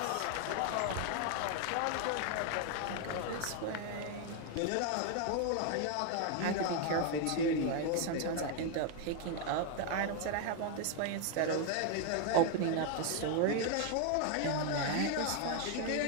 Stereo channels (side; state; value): both; different; correlation 0.01